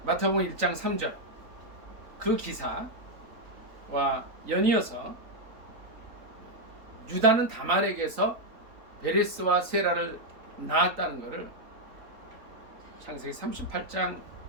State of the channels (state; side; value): late; left; 3.9 ms